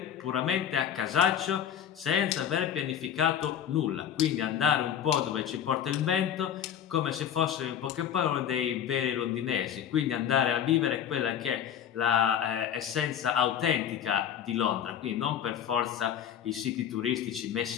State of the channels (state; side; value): quieter; right; 9.3 dB